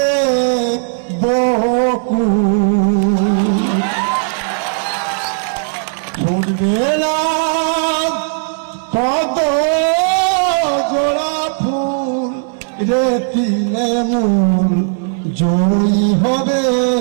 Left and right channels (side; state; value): left; silent; 63 dB below the other